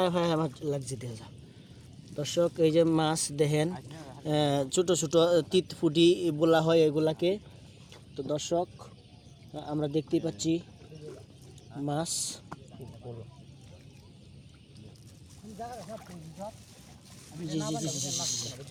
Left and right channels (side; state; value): both; identical; correlation 1.00